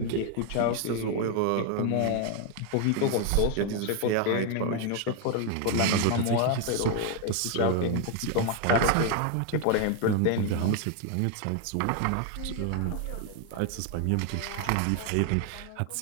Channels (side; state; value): both; different; correlation 0.00